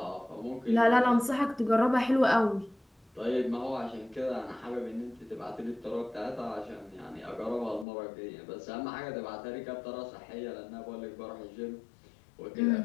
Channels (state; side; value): drops out; right; at 7.9 s